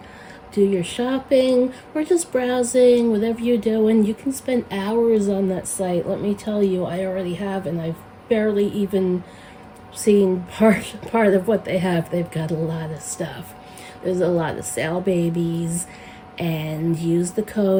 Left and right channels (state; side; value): identical; both; correlation 1.00